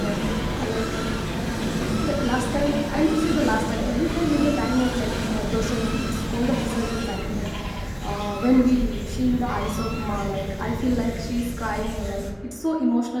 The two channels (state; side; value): identical; both; correlation 1.00